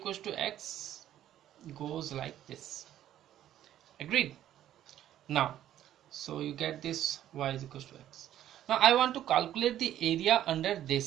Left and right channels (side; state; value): left; quieter; 11.9 dB